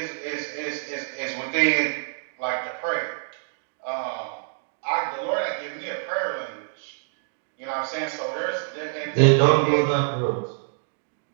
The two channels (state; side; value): silent; left; 61 dB below the other